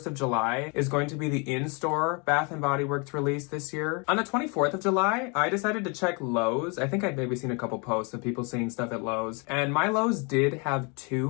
of July, is going to be the in-store Bath & Body Works release this year. On the 24th of July, I decided to check Lowe's. I think I'd maybe seen a couple posts of people seeing stuff at Lowe's. And my Lowe's did have 2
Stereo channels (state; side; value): quieter; right; 32.8 dB